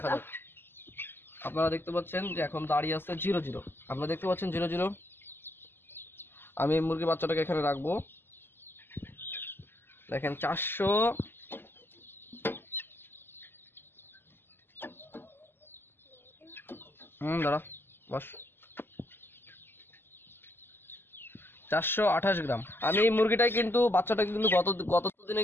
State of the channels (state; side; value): late; right; 0.10 ms